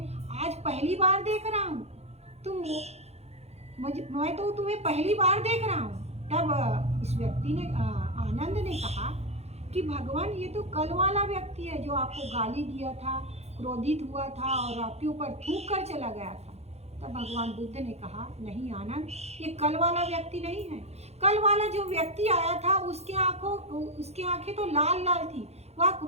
आज पहली बार देख रहा हूँ, मैं तो तुम्हें पहली बार देख रहा हूँ। तब उस व्यक्ति ने आनंद ने कहा कि भगवान, ये तो कल वाला व्यक्ति है जो आपको गाली दिया था, क्रोधित हुआ था और आपके ऊपर थूक कर चला गया था। तब भगवान बुद्ध ने कहा, नहीं आनंद, ये कल वाला व्यक्ति नहीं है। कल वाला जो व्यक्ति आया था उसकी आंखें तो लाल लाल थी, वह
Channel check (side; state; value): left; late; 0.31 ms